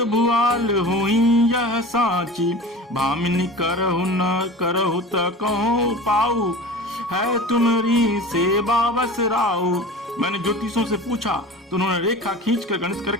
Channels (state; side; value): normal; both; correlation 0.36